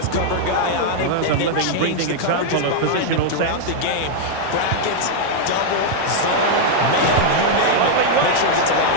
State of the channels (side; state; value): both; different; correlation 0.00